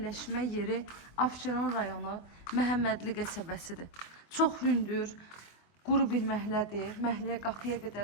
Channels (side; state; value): right; late; 24 ms